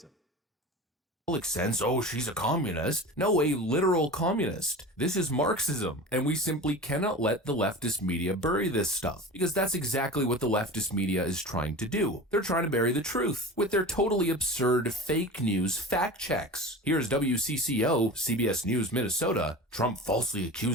sense, oh, she's a communist. No, a literal communist. This is Marxism, and we simply cannot let the leftist media bury this stuff, because that's exactly what the leftist media is trying to do. They're trying to bury the truth with their totally absurd fake news fact checks. Here's WCCO, CBS News, Minnesota. Trump falsely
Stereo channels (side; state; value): both; normal; correlation 0.33